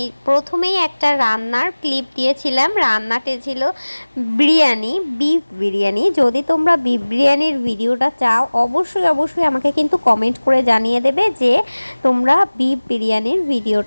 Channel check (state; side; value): inverted; both; correlation -1.00